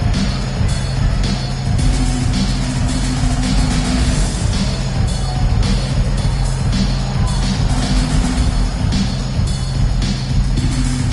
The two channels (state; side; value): identical; both; correlation 1.00